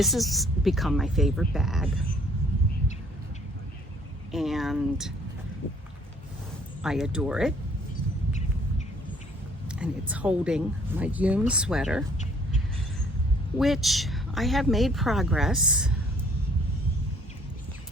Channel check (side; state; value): both; normal; correlation 0.59